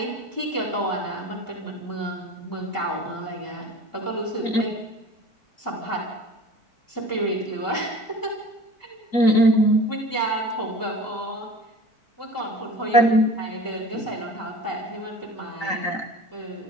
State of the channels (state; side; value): late; right; 3.9 ms